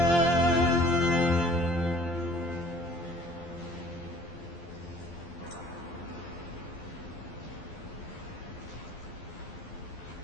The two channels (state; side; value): late; right; 12 ms